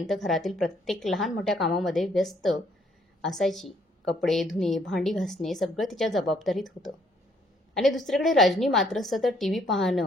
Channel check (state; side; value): normal; both; correlation 0.66